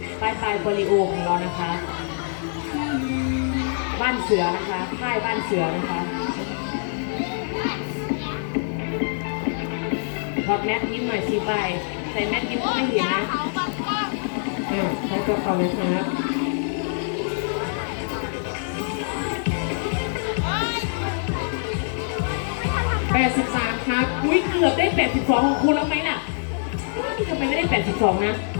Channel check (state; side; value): silent; right; digital silence